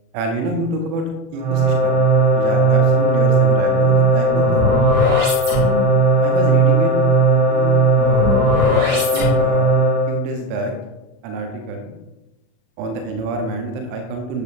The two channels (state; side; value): late; left; 36 ms